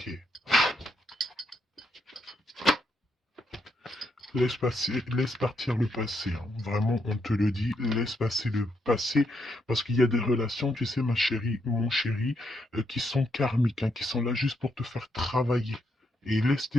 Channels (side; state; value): both; normal; correlation 0.78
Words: Laisse partir le passé, hein. Vraiment, on te le dit, laisse passer le passé, parce qu'il y a des relations, tu sais, ma chérie, mon chéri, qui sont karmiques, hein, qui sont là juste pour te faire travailler. Et laisse